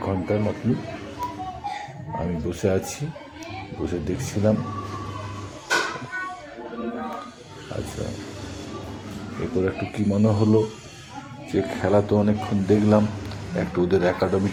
ঘন্টার মতন। আমি বসে আছি, বসে দেখছিলাম। আচ্ছা, এরপর একটু কী মনে হলো যে খেলা তো অনেকক্ষণ দেখলাম, একটু ওদের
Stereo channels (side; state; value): both; identical; correlation 1.00